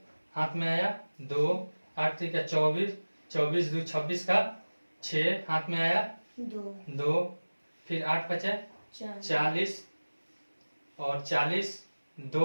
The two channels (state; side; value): inverted; both; correlation -1.00